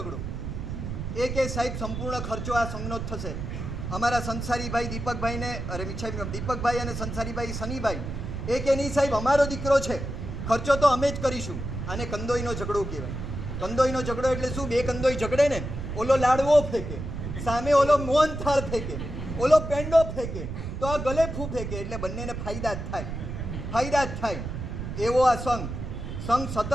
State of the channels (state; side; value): noise; right; rumble, 6 dB below the sound